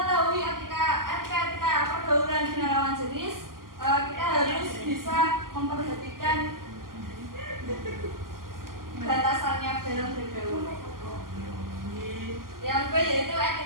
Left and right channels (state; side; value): late; left; 0.91 ms